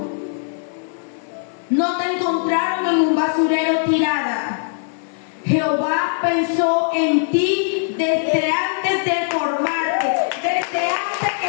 No te encontraron en un basurero tirada. Jehová pensó en ti desde antes de formarte, desde antes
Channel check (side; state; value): right; silent; 64 dB below the other